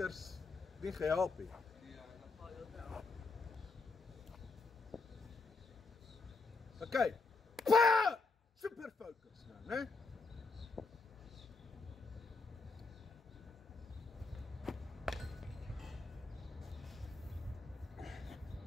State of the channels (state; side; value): quieter; right; 3.9 dB